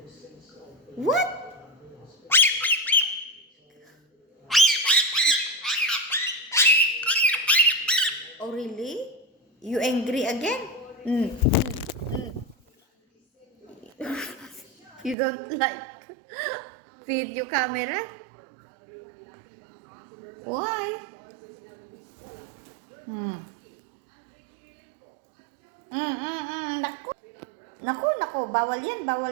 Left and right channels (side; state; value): left; drops out; at 15.2 s